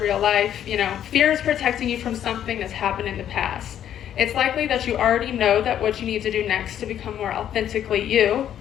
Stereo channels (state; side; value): quieter; right; 10.3 dB